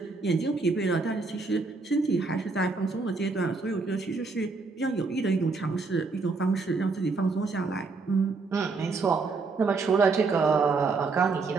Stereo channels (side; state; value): left; quieter; 4.1 dB